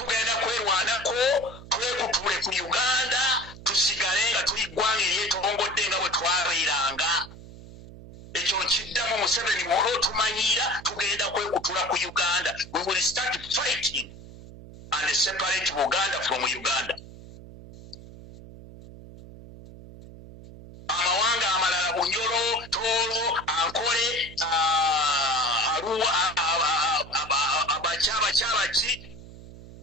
kwerwanako twekutule ku Uganda tusigale nga tuli ggwanga eryetorongodde nga bwe twabeeranga. Ekyo nkiddamu Museveni bw'olwo tumanyira tugenda kwekutula ku Uganda. We will start fighting and separate Buganda from Uganda. Amawanga amalala Bunyoro, Toro, Ankole, Arua, Abachaba,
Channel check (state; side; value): noise; right; hum, 17 dB below the sound